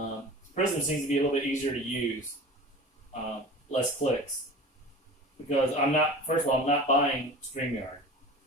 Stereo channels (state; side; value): normal; both; correlation 0.37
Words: Prism seems to be a little bit easier to use, less clicks. Because first of all, I'm not buying StreamYard.